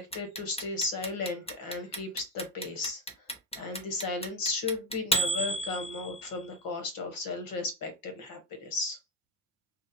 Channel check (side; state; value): both; normal; correlation 0.05